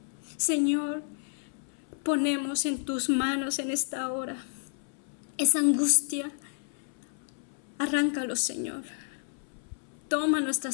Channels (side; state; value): right; silent; 57 dB below the other